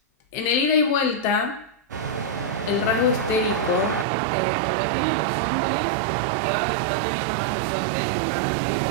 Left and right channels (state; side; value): drops out; left; at 4.0 s